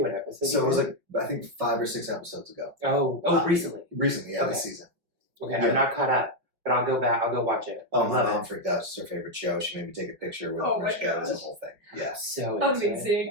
what episode? So it was I think 5 or 6 episodes ago. Oh, recently. Recently, yeah, this season. Okay, yeah. I'm not caught up, but I'll go back. I'll go watch it. Oh, my mom freaked out. It's her favorite show. She made me take a picture with her. It was a whole thing. Yeah. So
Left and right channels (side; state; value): left; late; 5.7 ms